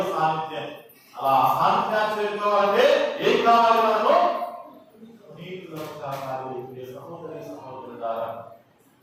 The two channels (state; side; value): identical; both; correlation 1.00